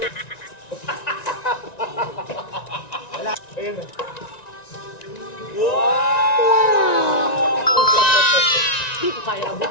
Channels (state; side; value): late; right; 1.9 ms